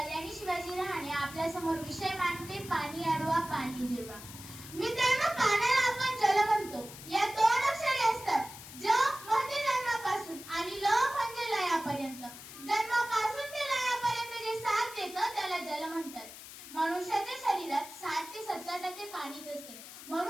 शिवाजी रहाणे आपल्या समोर विषय मांडते, पाणी अडवा पाणी जिरवा। मित्रांनो, पाण्याला आपण जल म्हणतो। या दोन अक्षरे असतात, ज म्हणजे जन्मापासून आणि ल म्हणजे लयापर्यंत। जन्मापासून ते लयापर्यंत जे साथ देतं त्याला जल म्हणतात। मनुष्याच्या शरीरात 60 ते 70% पाणीच असते,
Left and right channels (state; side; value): noise; left; hiss, 14 dB below the sound